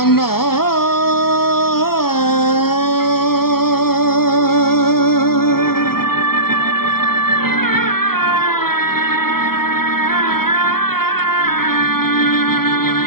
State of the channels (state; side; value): late; right; 0.94 ms